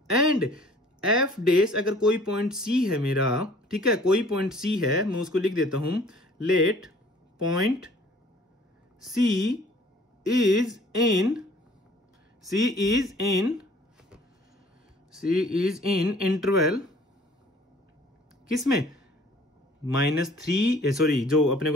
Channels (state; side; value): normal; both; correlation 0.53